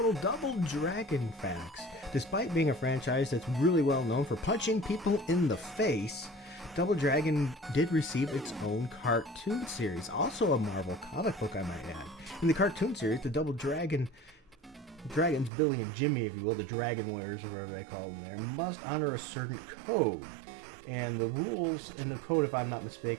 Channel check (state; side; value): drops out; left; at 15.5 s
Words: Double Dragon facts. Despite being a franchise that's really well known for punching people in the face, Double Dragon did receive its own cartoon series. Also a Marvel comic book, I might add. In the cartoon series, the Double Dragons, Billy and Jimmy, if you will, the Dragon Warriors or whatever they call them there, must honor a certain code. And the rules in the code, if I'm not